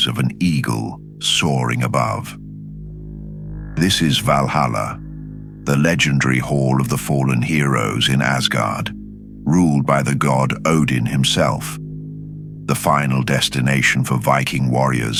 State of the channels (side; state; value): both; identical; correlation 1.00